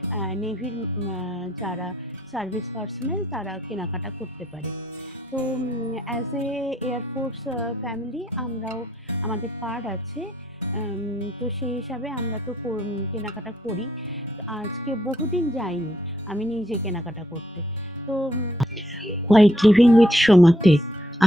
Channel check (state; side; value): normal; both; correlation 0.72